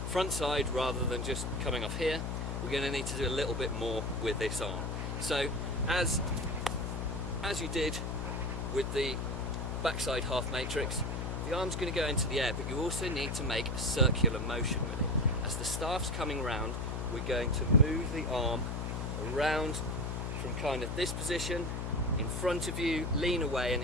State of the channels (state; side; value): noise; left; hum, 3 dB below the sound